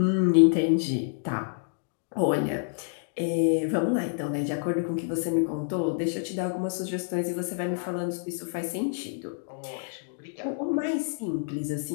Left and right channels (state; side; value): silent; right; digital silence